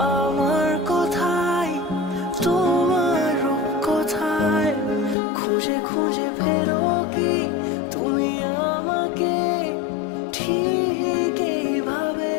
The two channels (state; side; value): drops out; right; at 5.2 s